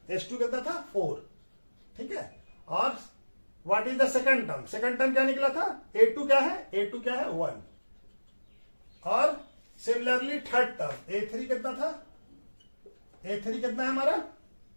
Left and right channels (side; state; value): both; inverted; correlation -1.00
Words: S2 कितना था 4। ठीक है, और what is the second term, second term क्या निकला था A2 क्या है, A2 क्या है 1, और सिमिलरली थर्ड टर्म A3 कितना था, A3 कितना है हमारा,